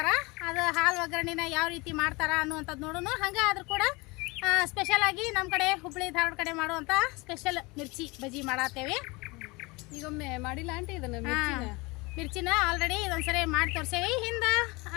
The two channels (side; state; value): right; quieter; 25.1 dB